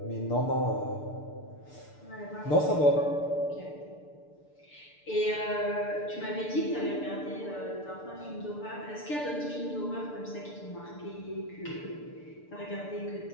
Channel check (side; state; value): right; late; 6.8 ms